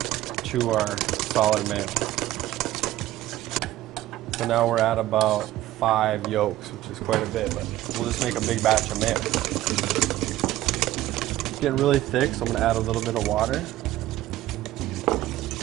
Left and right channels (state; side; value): quieter; left; 15.0 dB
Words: to our solid mayo. So now we're at about 5 yolks, which is quite a bit, but we'll just make a big batch of mayo. It's getting really thick, so I'm gonna add a little bit of water.